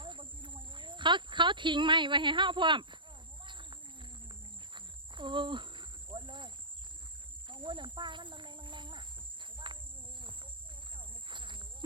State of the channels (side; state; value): left; late; 0.23 ms